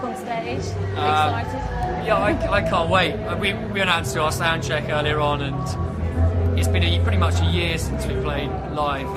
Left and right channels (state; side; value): identical; both; correlation 1.00